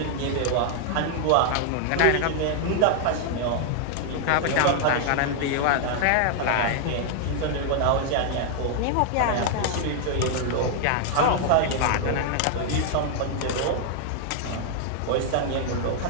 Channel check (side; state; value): both; different; correlation -0.01